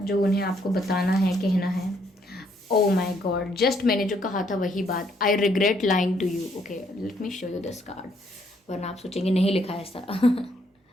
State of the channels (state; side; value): normal; both; correlation 0.70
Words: उन्हें आपको बताना है, कहना है। ओ माई गॉड, जस्ट मैंने जो कहा था वही बात। I regret lying to you. Okay let me show you this card, वरना आप सोचेंगे नहीं लिखा है ऐसा।